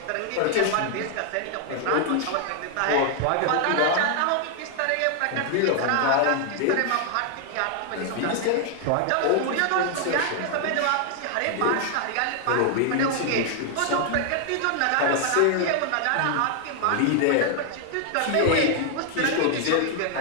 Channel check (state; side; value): different; both; correlation 0.00